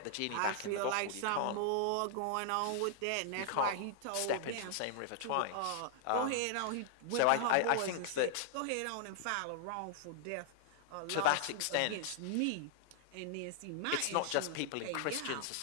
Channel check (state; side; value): different; both; correlation 0.00